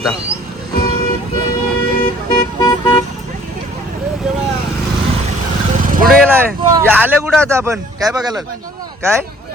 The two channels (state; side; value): normal; both; correlation 0.55